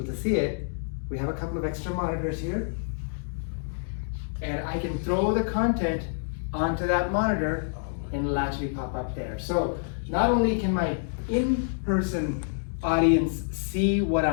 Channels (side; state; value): right; silent; digital silence